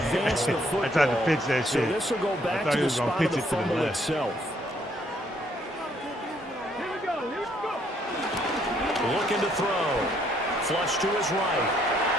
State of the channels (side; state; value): both; normal; correlation 0.68